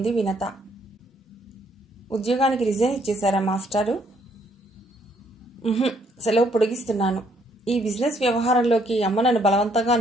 వినత. ఉద్యోగానికి రిజైన్ ఇచ్చేశారా మాస్టారు? సెలవు పొడిగిస్తున్నాను. ఈ బిజినెస్ వ్యవహారంలోకి అమ్మ నన్ను బలవంతంగా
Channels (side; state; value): both; normal; correlation 0.68